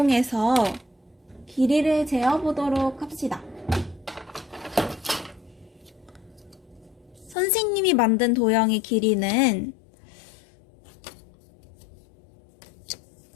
길이를 재어보도록 합시다. 선생님이 만든 도형의 길이는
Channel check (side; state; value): right; drops out; at 7.4 s